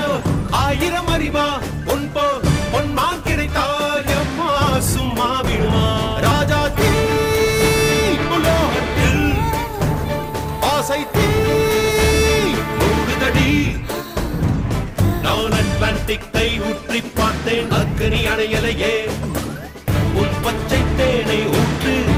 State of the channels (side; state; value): both; identical; correlation 1.00